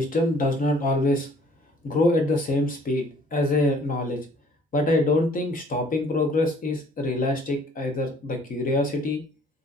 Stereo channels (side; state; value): both; normal; correlation 0.57